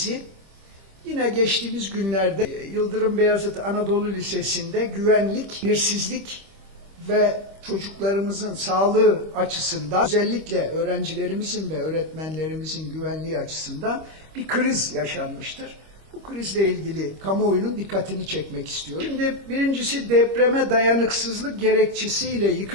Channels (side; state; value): left; late; 25 ms